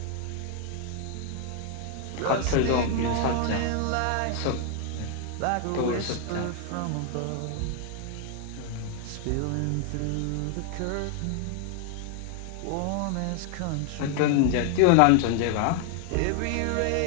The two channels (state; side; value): different; both; correlation 0.00